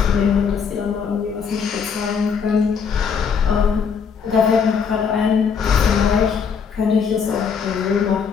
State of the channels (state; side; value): quieter; right; 6.3 dB